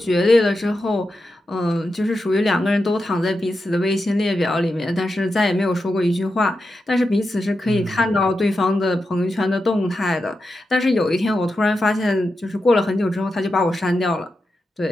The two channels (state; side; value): normal; both; correlation 0.89